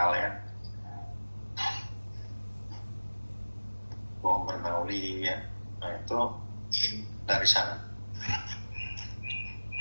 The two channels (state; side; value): inverted; both; correlation -1.00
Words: ya. Hukum Bernoulli ya. Nah, itu dari sana.